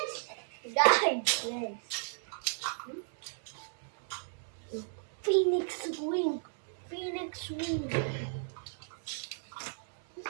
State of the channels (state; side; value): silent; left; 55 dB below the other